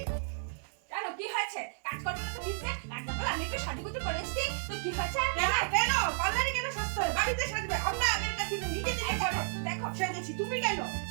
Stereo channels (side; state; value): left; silent; 56 dB below the other